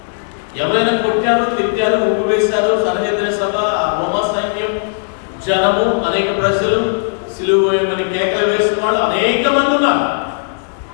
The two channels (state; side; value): silent; right; digital silence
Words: ఎవరైనా కొట్టారు, తిట్టారు, ఉప్పు వేశారు, సన్నిహిత సభ, రోమా సైన్యం, జనము, అనేక ప్రజలు, సిలువ వేయమని కేకలు వేసిన వాళ్ళు అనేక మంది ఉన్నారు.